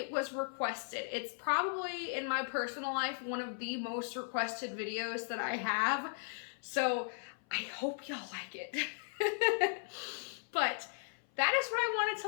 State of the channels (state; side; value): silent; right; 53 dB below the other